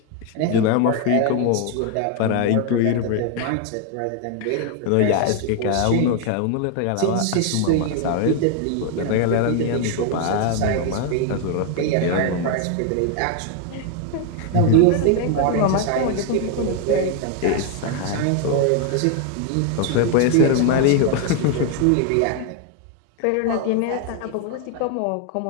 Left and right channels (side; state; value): both; different; correlation 0.01